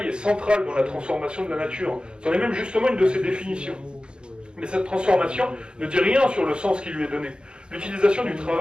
est central dans la transformation de la nature. C'en est même justement une de ses définitions. Mais cette transformation ne dit rien sur le sens qui lui est donné. L'utilisation du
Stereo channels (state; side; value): late; left; 0.052 ms